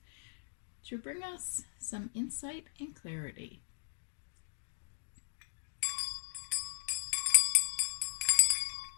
to bring us some insight and clarity.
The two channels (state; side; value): silent; right; digital silence